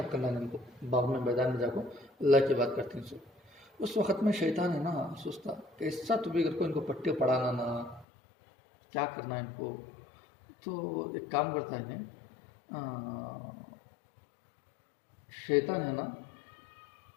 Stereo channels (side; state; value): right; drops out; at 8.1 s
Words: करना नहीं उनको बाग में मैदान में जाकर अल्लाह की बात करते हैं सब। उस वक़्त में शैतान है ना सोचता कैसा तो भी अगर कोई इनको पट्टे पढ़ाना ना क्या करना है इनको, तो एक काम करता है इन्हें शैतान है ना